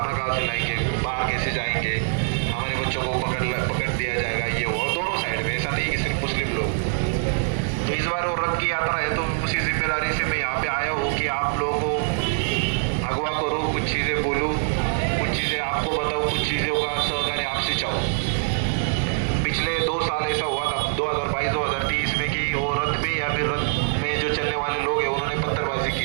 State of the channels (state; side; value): silent; left; digital silence